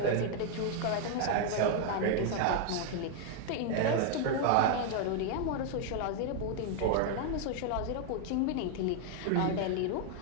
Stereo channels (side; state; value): both; different; correlation 0.00